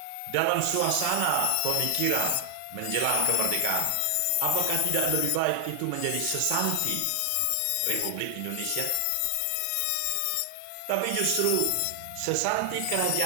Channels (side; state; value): both; different; correlation 0.00